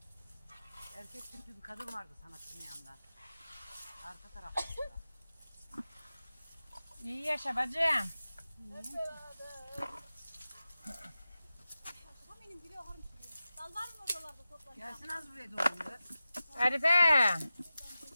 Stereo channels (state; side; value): inverted; both; correlation -0.94